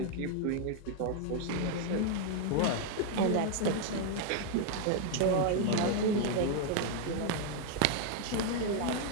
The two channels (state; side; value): different; both; correlation 0.00